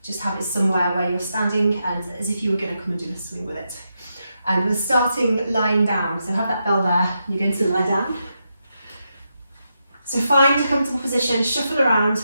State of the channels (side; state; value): both; inverted; correlation -0.85